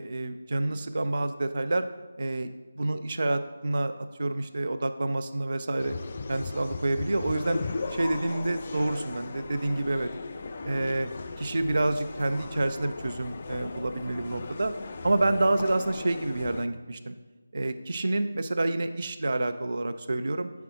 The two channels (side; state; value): both; inverted; correlation -0.96